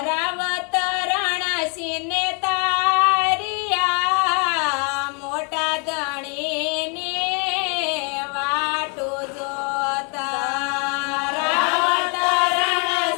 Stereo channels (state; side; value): quieter; right; 34.9 dB